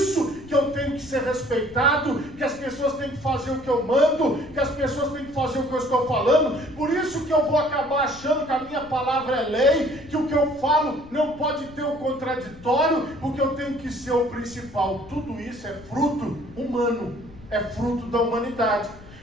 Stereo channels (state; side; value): noise; left; rumble, 20 dB below the sound